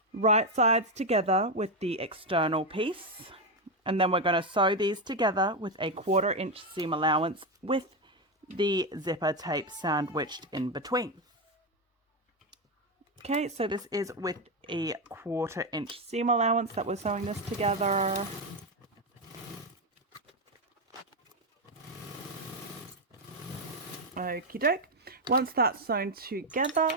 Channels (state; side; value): normal; both; correlation 0.08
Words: right sides together with the external piece, and then we're going to sew these together with a 1/4 inch seam allowance with the zipper tape sandwiched in between. Okay, so this is with a 1/4 inch seam allowance that we're sewing this together. Okie doke. Once that's sewn